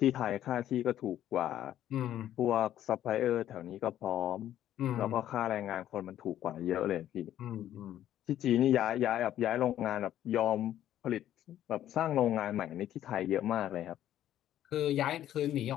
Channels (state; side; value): quieter; right; 11.9 dB